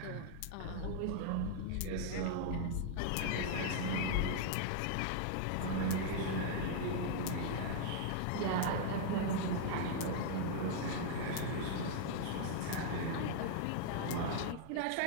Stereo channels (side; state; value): both; different; correlation -0.01